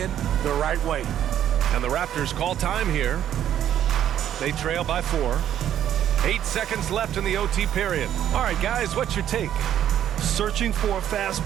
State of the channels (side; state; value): left; quieter; 10.7 dB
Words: the right way. And the Raptors call time here. They trail by 4. 8 seconds left in the OT period. All right, guys, what's your take? Searching for a